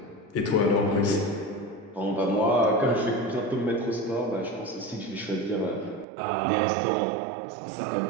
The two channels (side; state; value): left; drops out; at 6.1 s